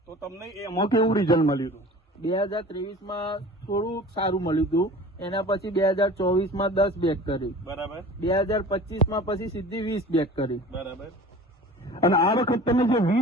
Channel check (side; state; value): both; normal; correlation 0.42